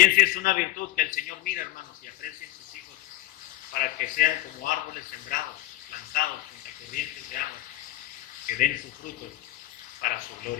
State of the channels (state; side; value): quieter; right; 16.0 dB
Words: es una virtud que el Señor mira, hermanos, y aprecia en sus hijos para que sean como árboles sembrados, plantados junto a corrientes de agua, que den sus frutos para su